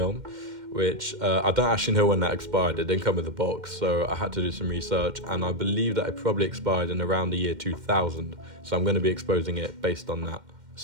which I don't actually know when that expired. It didn't come with a box, so I had to do some research, and I believe that it probably expired in around the year 2000. So I'm going to be exposing it based on that.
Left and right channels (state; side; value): late; left; 2.1 ms